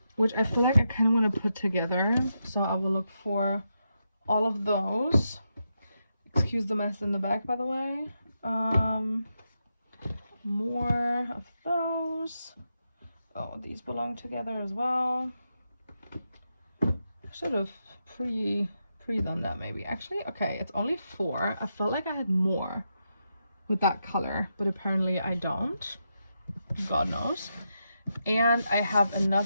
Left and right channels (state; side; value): inverted; both; correlation -0.85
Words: which I feel like I kind of want to put together. So I will look for all of those. Excuse the mess in the back, by the way. More of those. Oh, these belong together as well. I should have 3 than that maybe. Actually, okay, it's only 4. I felt like I had more with that color, but apparently I don't. God knows. And I have